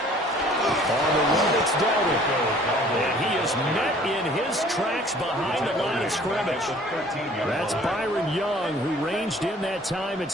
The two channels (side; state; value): both; normal; correlation 0.53